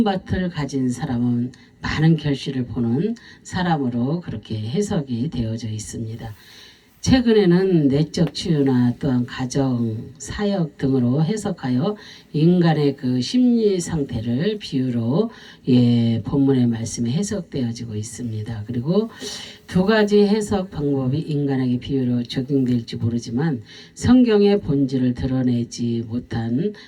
밭을 가진 사람은 많은 결실을 보는 사람으로 그렇게 해석이 되어져 있습니다. 최근에는 내적 치유나 또한 가정, 사역 등으로 해석하여 인간의 그 심리 상태를 비유로 본문의 말씀에 해석되어지고 있습니다. 그리고 두 가지 해석 방법이 인간에게 비유로 적용될지 모르지만 성경의 본질을 드러내지 못한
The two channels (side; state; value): both; identical; correlation 1.00